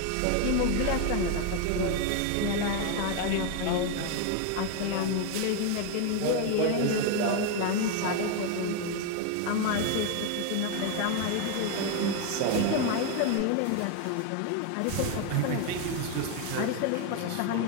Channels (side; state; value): both; different; correlation 0.01